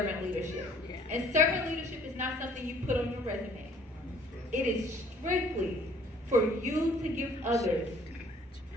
leadership. And servant leadership is not something you put on your resume. It is strictly for you to give others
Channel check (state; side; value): normal; both; correlation 0.57